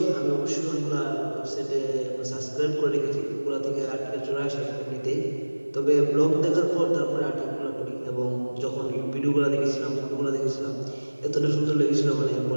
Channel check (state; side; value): inverted; both; correlation -1.00